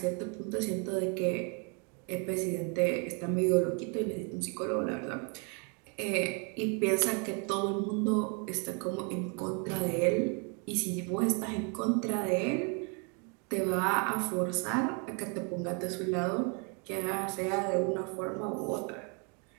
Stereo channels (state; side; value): quieter; left; 35.9 dB